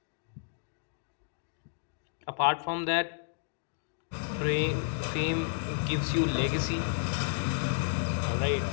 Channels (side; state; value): right; silent; digital silence